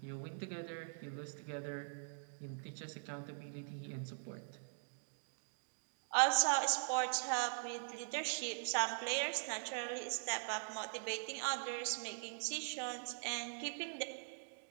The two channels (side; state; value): left; silent; digital silence